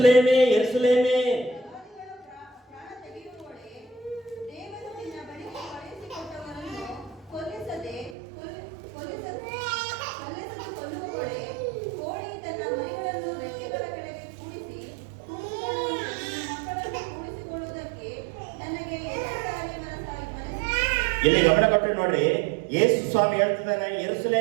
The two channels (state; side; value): drops out; left; at 8.2 s